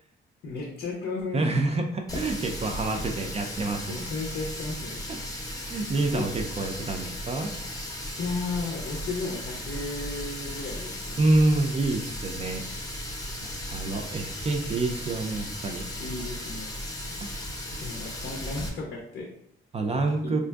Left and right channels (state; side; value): normal; both; correlation 0.68